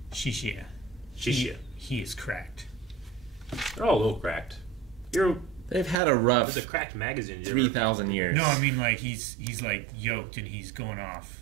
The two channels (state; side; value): drops out; left; at 6.0 s